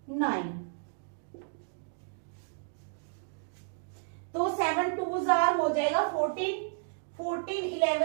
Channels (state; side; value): silent; left; digital silence